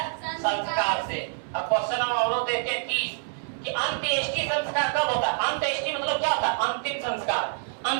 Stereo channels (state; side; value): silent; left; 60 dB below the other